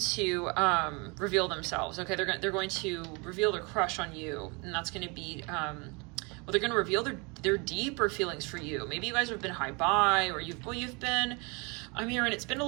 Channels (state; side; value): quieter; left; 30.2 dB